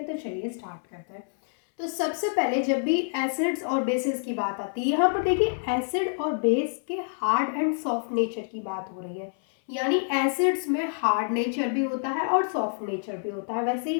तो चलिए स्टार्ट करते हैं। तो सबसे पहले जब भी एसिड्स और बेसिस की बात आती है, यहाँ पर देखिए एसिड और बेस के हार्ड एंड सॉफ्ट नेचर की बात हो रही है। यानी एसिड्स में हार्ड नेचर भी होता है और सॉफ्ट नेचर भी होता है, वैसे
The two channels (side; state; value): right; silent; 60 dB below the other